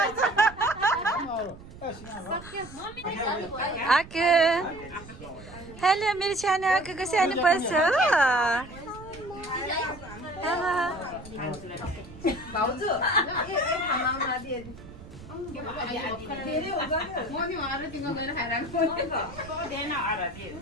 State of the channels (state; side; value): noise; right; rumble, 17 dB below the sound